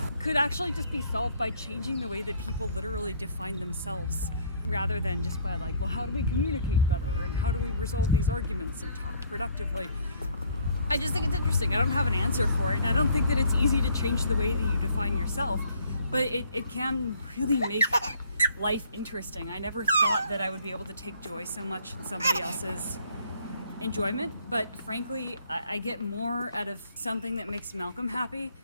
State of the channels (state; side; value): inverted; both; correlation -0.61